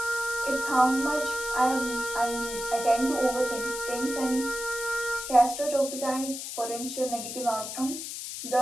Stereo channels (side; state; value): left; noise; hiss, 7 dB below the sound